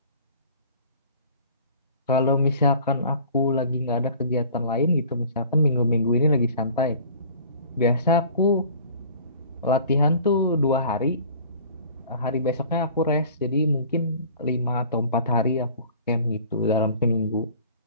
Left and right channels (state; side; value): inverted; both; correlation -0.47